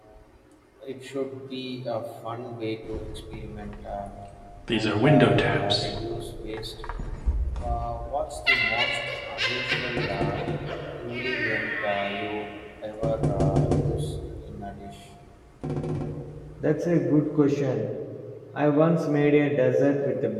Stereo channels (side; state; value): both; identical; correlation 1.00